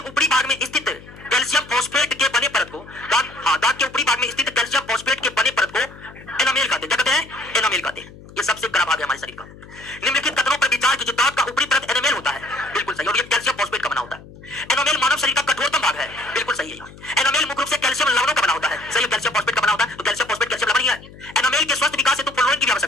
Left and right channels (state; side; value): noise; left; hum, 19 dB below the sound